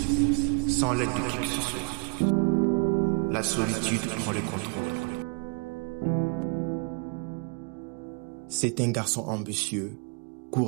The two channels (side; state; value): left; quieter; 35.4 dB